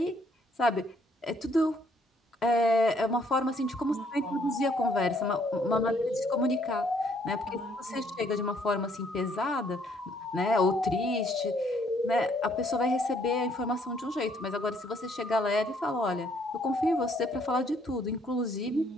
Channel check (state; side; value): normal; both; correlation 0.66